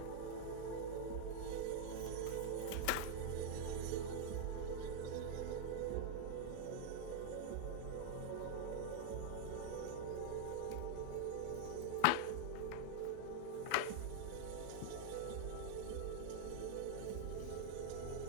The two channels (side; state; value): both; different; correlation 0.00